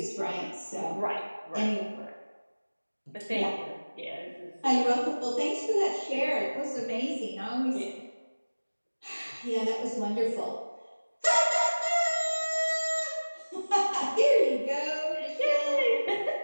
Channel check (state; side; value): inverted; both; correlation -1.00